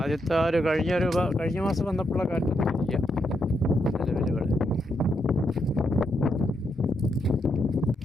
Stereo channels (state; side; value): normal; both; correlation 0.80